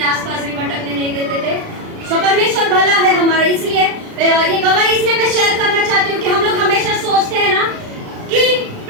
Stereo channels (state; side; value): late; left; 36 ms